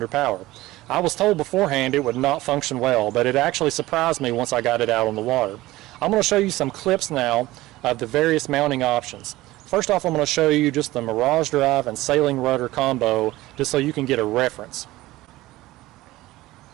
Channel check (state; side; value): quieter; left; 17.8 dB